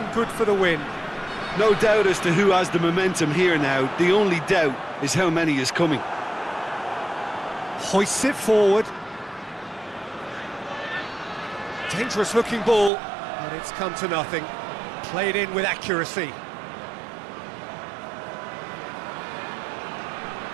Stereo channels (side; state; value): left; drops out; at 12.9 s